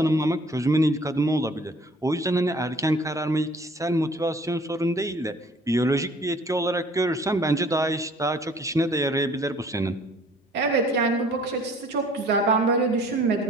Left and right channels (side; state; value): both; normal; correlation 0.54